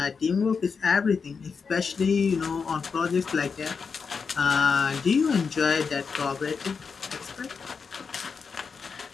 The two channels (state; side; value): quieter; right; 5.5 dB